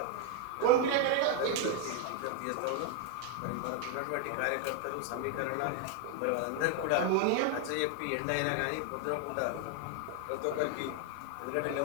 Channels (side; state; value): both; different; correlation 0.00